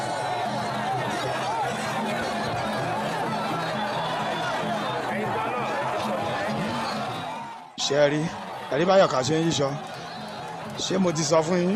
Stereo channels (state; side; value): identical; both; correlation 1.00